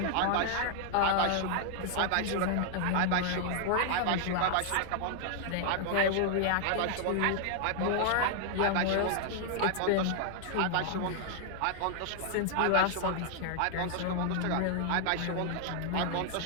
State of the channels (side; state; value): both; different; correlation 0.00